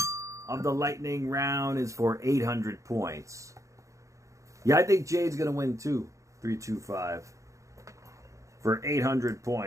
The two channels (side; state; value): left; late; 0.15 ms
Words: of the lightning round is for 800 points. Yeah, I think Jade's going to win too. 325 for 800